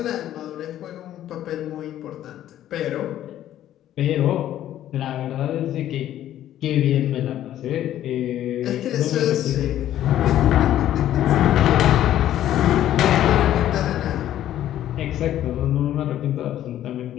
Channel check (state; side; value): quieter; right; 12.2 dB